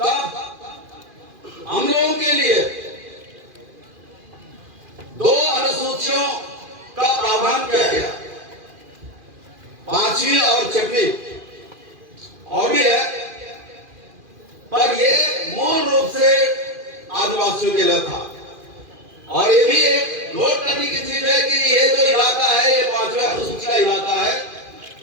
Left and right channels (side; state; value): left; late; 2.5 ms